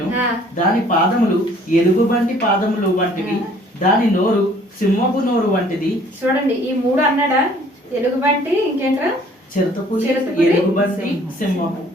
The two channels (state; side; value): normal; both; correlation 0.57